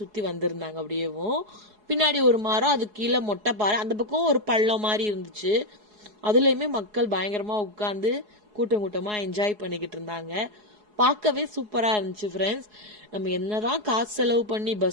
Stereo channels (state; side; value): late; left; 4.8 ms